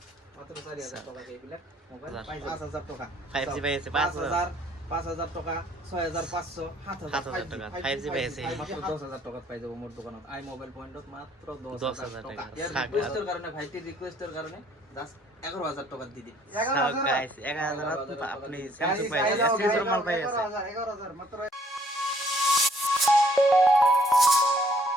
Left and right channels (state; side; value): normal; both; correlation 0.63